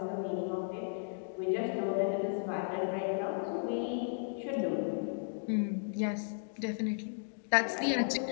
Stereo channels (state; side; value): silent; right; digital silence